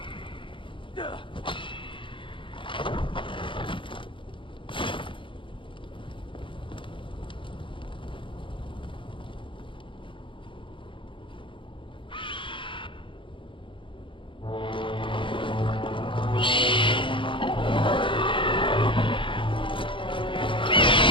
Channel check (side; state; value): right; late; 0.24 ms